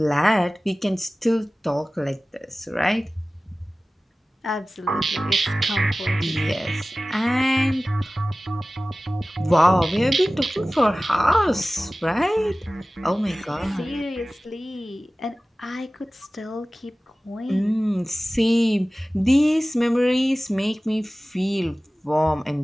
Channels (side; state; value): both; normal; correlation 0.97